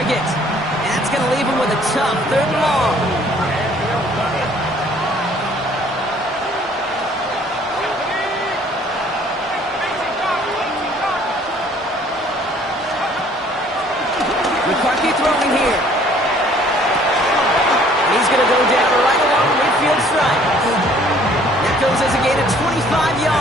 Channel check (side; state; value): both; normal; correlation 0.58